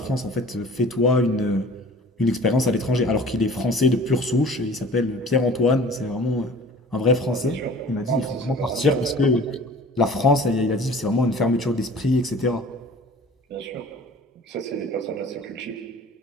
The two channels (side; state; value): both; normal; correlation 0.45